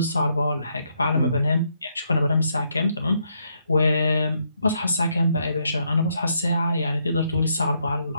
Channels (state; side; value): inverted; both; correlation -0.75